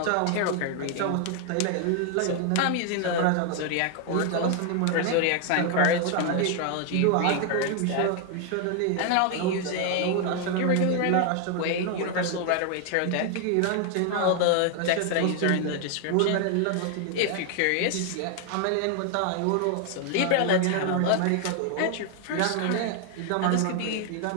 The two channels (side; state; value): both; different; correlation 0.00